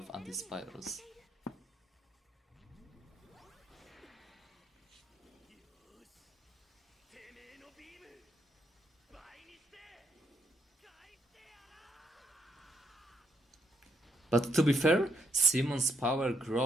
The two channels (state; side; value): normal; both; correlation 0.77